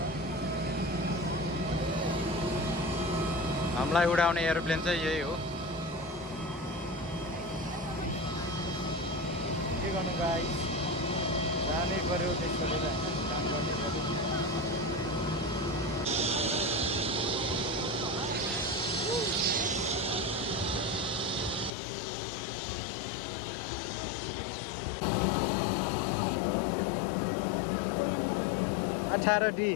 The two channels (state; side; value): drops out; right; at 21.7 s